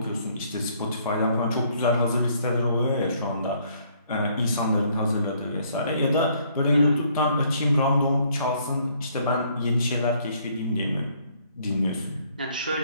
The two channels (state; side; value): inverted; both; correlation -0.65